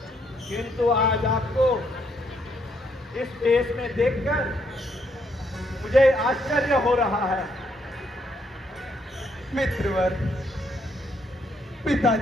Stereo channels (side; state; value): both; normal; correlation 0.73